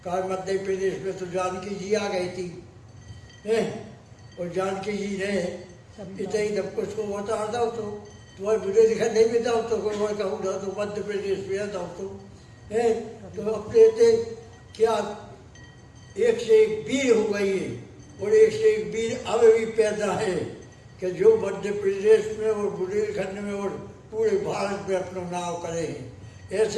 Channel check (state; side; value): identical; both; correlation 1.00